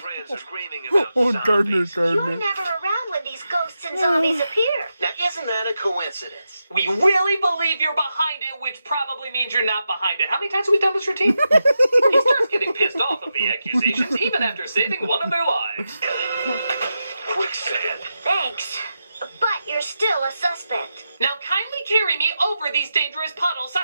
are screaming about Oh, Gardner, zombies. You're Gardner. never around when these ghosts and zombies appear. Now, isn't that a coincidence? We really believe you're behind it, which probably means you're not behind it. How many times have we done this routine? He starts getting pissed off of the accusations, even after saving one of their lives. Quicksand. Thanks. But you're still a suspect. Now kindly carry me over these dangerous puddles,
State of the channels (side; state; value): both; inverted; correlation -0.88